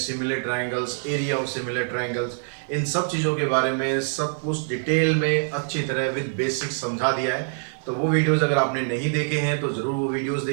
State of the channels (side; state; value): left; silent; digital silence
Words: triangles, area of similar triangles, इन सब चीज़ों के बारे में सब कुछ डिटेल में अच्छी तरह विद बेसिक्स समझा दिया है। तो वो वीडियोस अगर आपने नहीं देखे हैं तो ज़रूर वो वीडियोस